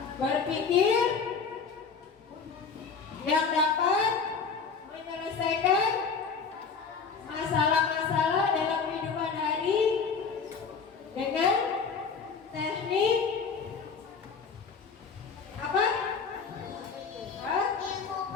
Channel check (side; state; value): right; quieter; 5.5 dB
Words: Berpikir yang dapat menyelesaikan masalah-masalah dalam kehidupan hari dengan teknik apa?